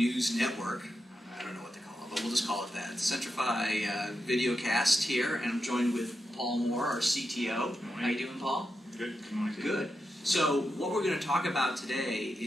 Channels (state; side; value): normal; both; correlation 0.88